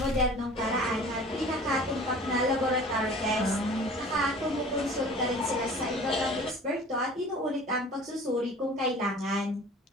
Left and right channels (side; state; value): both; normal; correlation 0.45